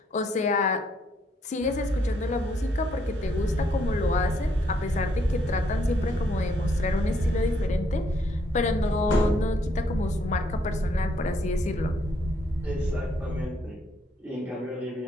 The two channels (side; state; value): both; normal; correlation 0.71